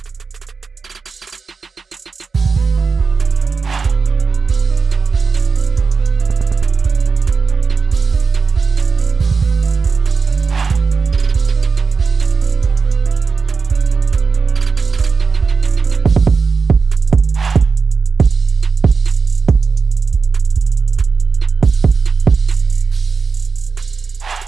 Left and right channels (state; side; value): quieter; left; 4.9 dB